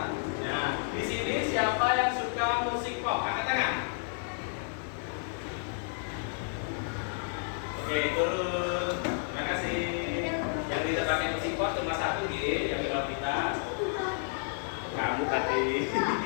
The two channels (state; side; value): silent; right; digital silence